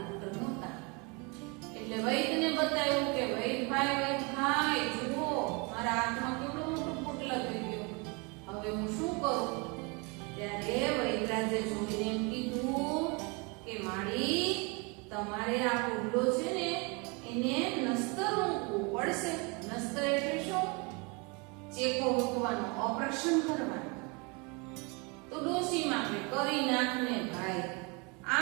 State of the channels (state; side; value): quieter; left; 30.3 dB